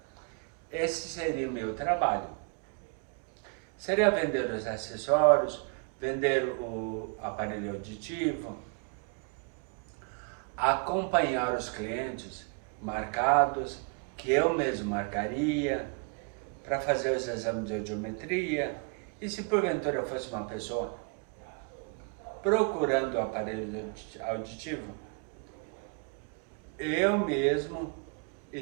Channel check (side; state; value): left; quieter; 37.0 dB